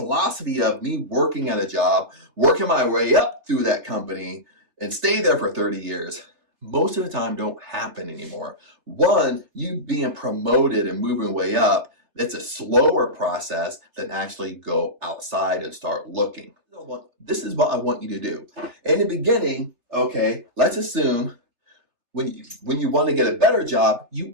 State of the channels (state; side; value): late; left; 3.3 ms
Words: of me working at a job, working my way up through that company, and stay there for 30 years, most of the time don't happen anymore. One, you being promoted and moving way up, it's a slower process than actually go outside and start looking. This is what I want you to do. In the beginning, okay, let's assume when you want to get a better job,